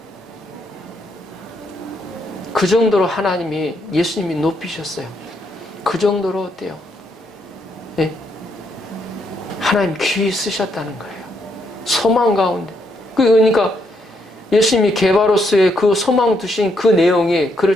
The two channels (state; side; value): normal; both; correlation 0.76